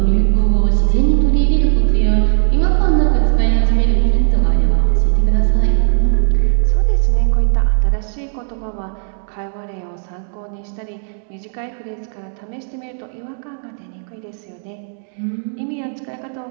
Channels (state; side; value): silent; left; digital silence